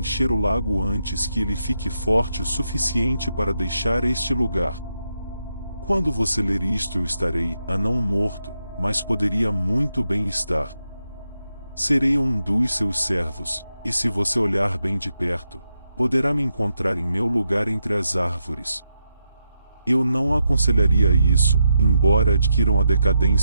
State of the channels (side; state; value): both; inverted; correlation -0.84